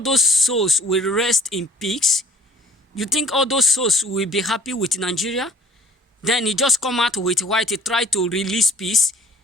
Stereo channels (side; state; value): both; normal; correlation 0.53